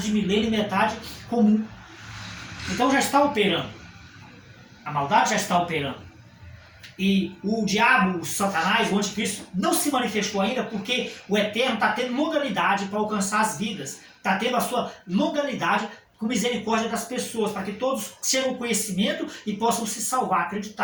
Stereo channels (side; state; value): both; identical; correlation 1.00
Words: milênio e metade comum. Então já está operando. A maldade já está operando. E o diabo, o Satanás, o anticristo, não se manifestou ainda porque o Eterno está tendo longanimidade para alcançar as vidas. Está tendo a sua longanimidade com misericórdia das pessoas, para que todos cheguem ao conhecimento e possam se salvar,